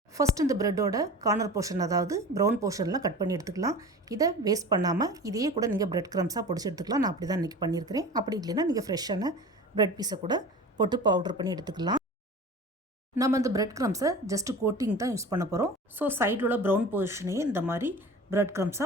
ஃபஸ்ட் இந்த ப்ரெட்டோட கார்னர் போர்ஷன், அதாவது ப்ரௌன் போர்ஷன்லாம் கட் பண்ணி எடுத்துக்கலாம். இதை வேஸ்ட் பண்ணாமல் இதையே கூட நீங்கள் பிரெட் க்ரம்ஸாக பொடிச்சு எடுத்துக்கலாம். நான் அப்படி தான் இன்றைக்கி பண்ணியிருக்கிறேன். அப்படி இல்லைன்னா நீங்கள் ஃப்ரெஷ்ஷான பிரெட் பீஸை கூட போட்டு பவுடர் பண்ணி எடுத்துக்கலாம். நம்ம இந்த பிரெட் க்ரம்ஸை ஜஸ்ட்டு கோட்டிங் தான் யூஸ் பண்ண போகிறோம். ஸோ சைடில் உள்ள ப்ரௌன் போர்ஷனையே இந்த மாதிரி பிரெட் க்ரம்ஸாக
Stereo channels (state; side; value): normal; both; correlation 0.37